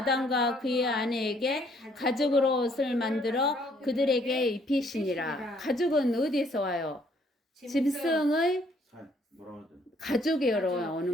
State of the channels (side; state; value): both; normal; correlation 0.65